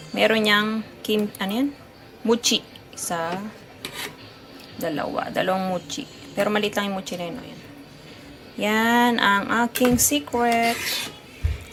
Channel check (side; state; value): both; identical; correlation 1.00